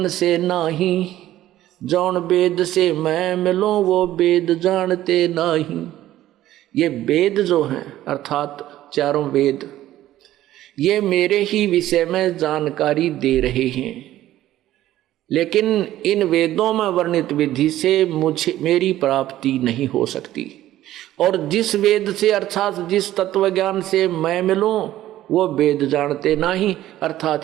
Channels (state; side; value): quieter; left; 13.9 dB